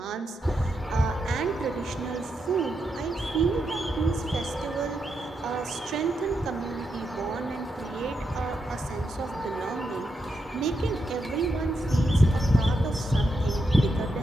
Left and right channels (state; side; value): normal; both; correlation 0.83